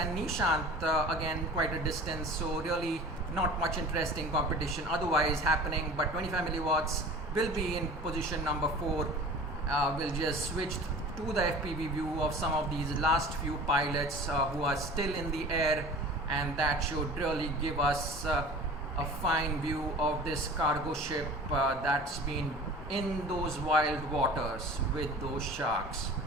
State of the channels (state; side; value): normal; both; correlation 0.40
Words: Nishant, again quite a distance, so really not much interesting competition otherwise happening, but 25 milliwatts will be in position number 4. We'll just switch to the FPV view of some of these last few pilots who are still in the air, and that should really give us a fine view of this cargo ship that's been in those wild waters with those sharks.